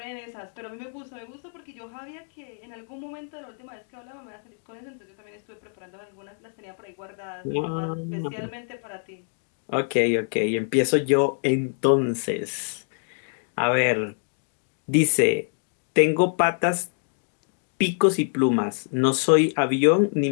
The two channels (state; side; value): silent; right; 61 dB below the other